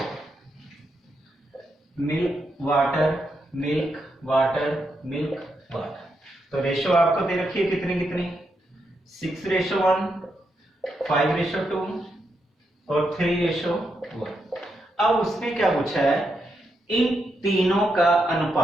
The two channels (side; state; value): both; normal; correlation 0.82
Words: milk water milk water milk water. तो रेशो आपको दे रखी है कितनी कितनी 6:1, 5:2 और 3:1। अब उसने क्या पूछा है, इन तीनों का